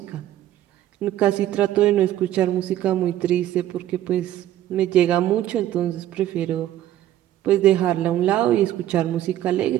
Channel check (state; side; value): quieter; left; 12.9 dB